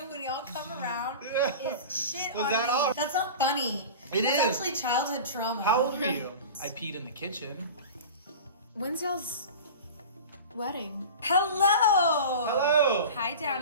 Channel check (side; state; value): both; inverted; correlation -0.33